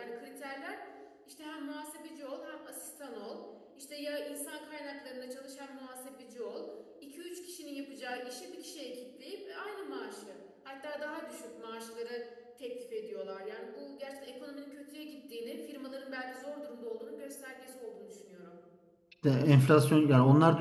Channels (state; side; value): identical; both; correlation 1.00